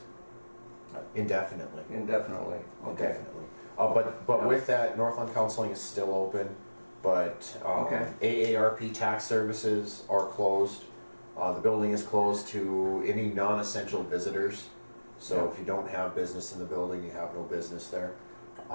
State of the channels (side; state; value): both; inverted; correlation -1.00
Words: Indefinitely. Indefinitely. Okay. Indefinitely. But with that, Northland Counseling is still open. but Okay. AARP tax services are closed. The building is closed to any non-essential visitors. So if you don't have business in the building, you have no business there.